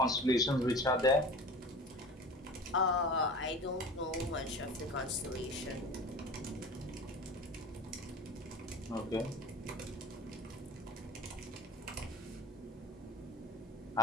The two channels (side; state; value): both; normal; correlation 0.37